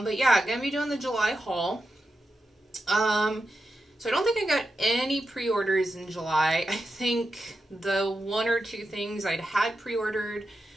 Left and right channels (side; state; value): both; normal; correlation 0.89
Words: yeah, going to be doing the July haul. So I don't think I got any pre-orders in July. I think the one or two things I'd had pre-ordered